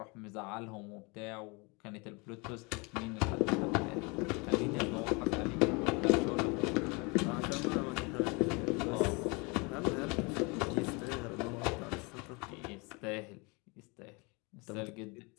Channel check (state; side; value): quieter; right; 29.0 dB